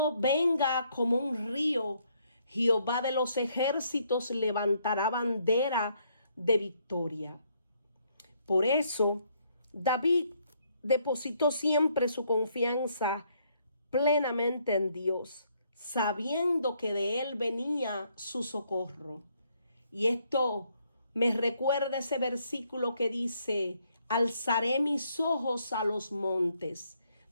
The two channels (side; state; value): both; inverted; correlation -0.71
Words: venga como un río, Jehová de los ejércitos levantará bandera de victoria. Por eso, David depositó siempre su confianza plenamente en Dios, sabiendo que de él venía su socorro. Y esto me recuerda ese versículo que dice: alzaré mis ojos a los montes.